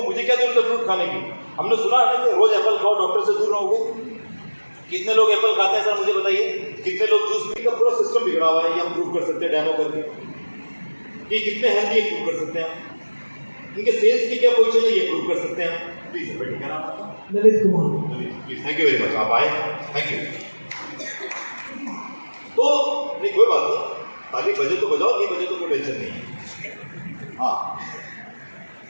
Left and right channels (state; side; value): inverted; both; correlation -1.00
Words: मुझे क्या जरूरत है फ्रूट खाने की? हमने सुना है ना कि रोज एप्पल खाओ, डॉक्टर से दूर रहोगे। कितने लोग एप्पल खाते हैं सर मुझे बताइए? कितने लोग जूस पी का पूरा सिस्टम बिगड़ा हुआ है, ये हम प्रूव कर सकते हैं डेमो करके कि कितने हेल्दी है, प्रूव कर सकते हैं। इनके सेल्स की क्या पोजीशन है ये प्रूव कर सकते हैं। प्लीज सर बैठिए, क्या नाम है? Lalit Kumar. Please, thank you very much, आप आए, थैंक यू। तो नहीं कोई बात नहीं, ताली बजे तो बजाओ, नहीं बजे तो कोई टेंशन नहीं है। हाँ